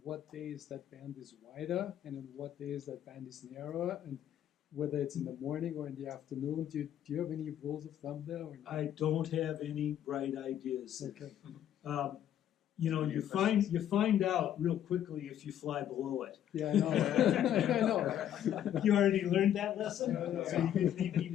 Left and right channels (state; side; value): quieter; right; 10.7 dB